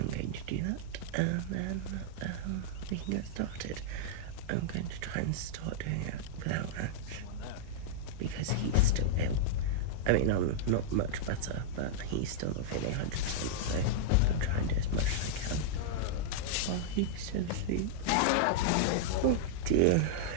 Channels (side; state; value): both; different; correlation -0.02